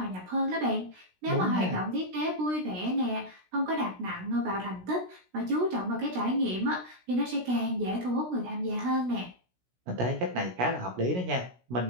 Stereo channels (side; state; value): left; late; 16 ms